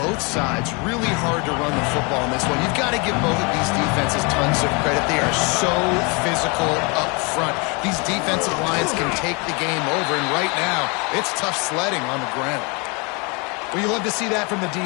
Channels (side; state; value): right; quieter; 30.9 dB